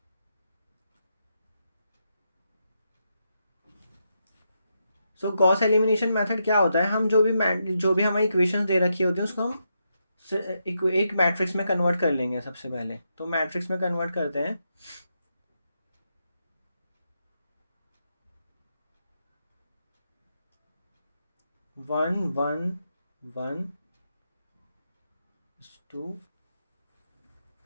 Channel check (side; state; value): both; inverted; correlation -0.83